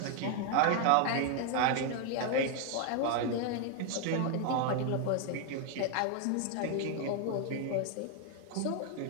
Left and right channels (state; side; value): different; both; correlation 0.01